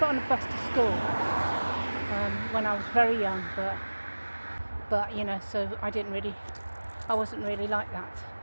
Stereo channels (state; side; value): inverted; both; correlation -1.00